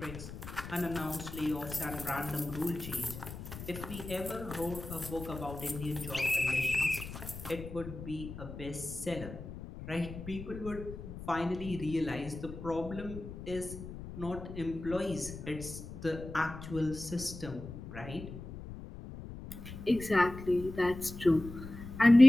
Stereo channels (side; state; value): left; noise; rumble, 11 dB below the sound